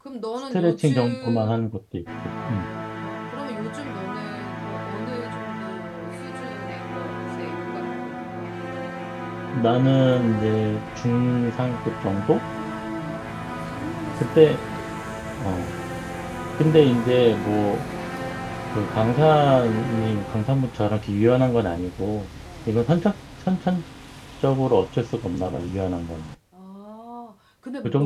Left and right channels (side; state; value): both; identical; correlation 1.00